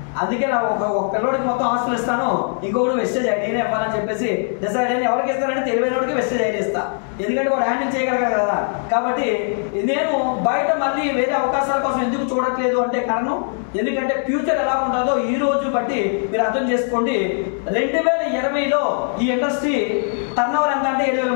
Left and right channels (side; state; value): right; silent; 59 dB below the other